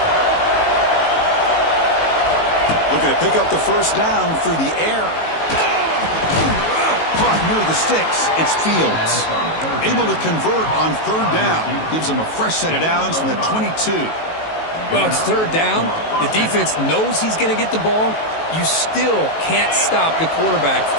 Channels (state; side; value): late; right; 19 ms